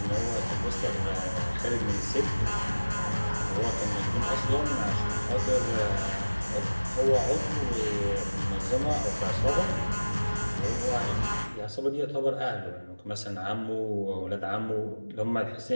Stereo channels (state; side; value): inverted; both; correlation -1.00